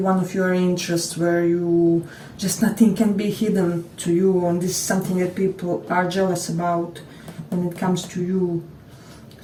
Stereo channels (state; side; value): identical; both; correlation 1.00